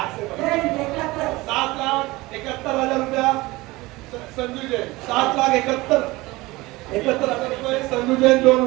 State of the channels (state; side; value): quieter; left; 20.9 dB